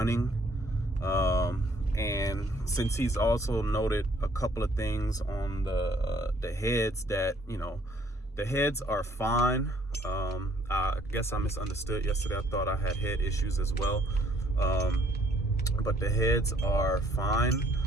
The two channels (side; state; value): both; normal; correlation 0.63